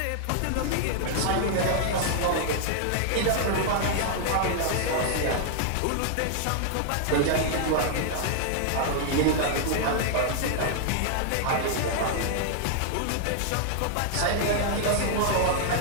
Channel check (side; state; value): both; different; correlation 0.00